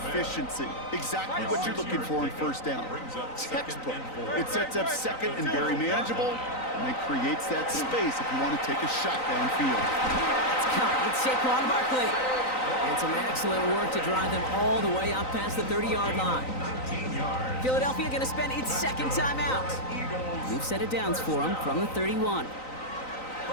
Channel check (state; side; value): late; right; 3.9 ms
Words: Exactly what you're looking for in first down. Textbook. It sets up second and very manageable, and it creates that space if you want to take a shot downfield. It's caught. It's Saquon Barkley. And some excellent work to drive them all the way up past the 30-yard line. Philadelphia going to spend its second timeout. We've set it downs for them from the 31.